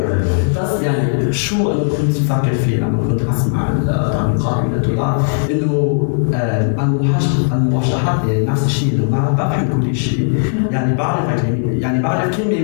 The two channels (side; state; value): right; silent; 69 dB below the other